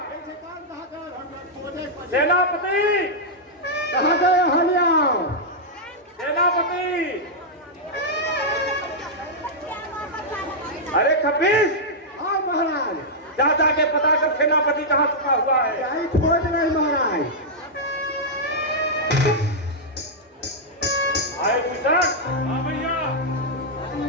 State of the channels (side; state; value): both; normal; correlation -0.07